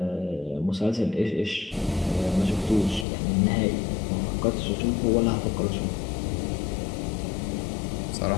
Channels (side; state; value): right; drops out; at 3.1 s